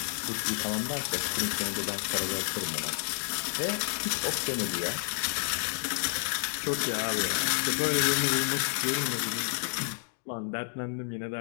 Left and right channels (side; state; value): right; silent; 58 dB below the other